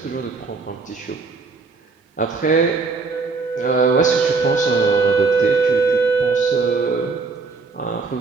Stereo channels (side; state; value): left; quieter; 4.4 dB